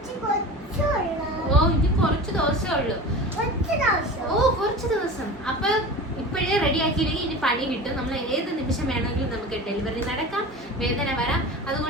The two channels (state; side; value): normal; both; correlation 0.33